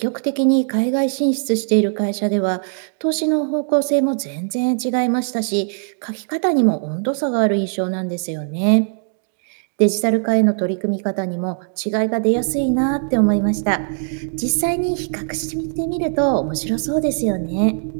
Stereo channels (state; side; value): silent; left; digital silence